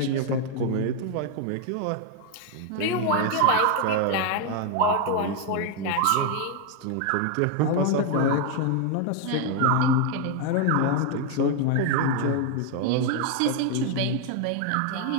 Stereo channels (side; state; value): both; different; correlation 0.01